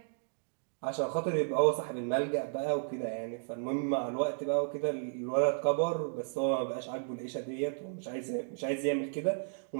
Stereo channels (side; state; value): left; silent; digital silence